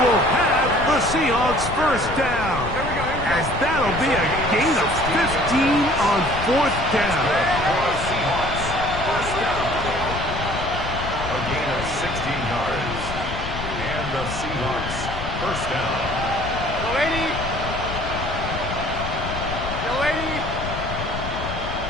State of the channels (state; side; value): noise; left; rumble, 7 dB below the sound